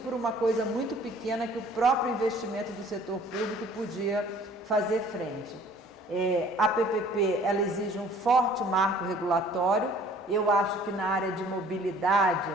uma coisa muito pequena que o próprio investimento do setor público podia fazer frente. A PPP ela exige um forte marco regulatório. Eu acho que na área de mobilidade,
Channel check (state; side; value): normal; both; correlation 0.53